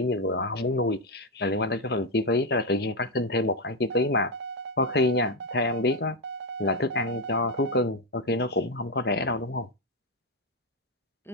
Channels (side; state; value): both; normal; correlation 0.05